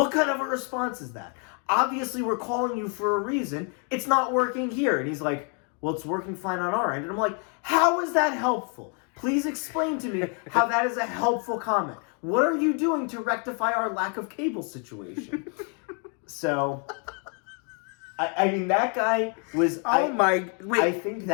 kind of a response is that? Obviously, we're calling you for a reason. It's not working here. And he's like, well, it's working fine on our end. And I'm like, how is that helpful? Please explain to me how that is a helpful comment. What are you doing to rectify our lack of cable situation? So, I mean, that guy was... Wait, I think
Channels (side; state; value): right; quieter; 38.8 dB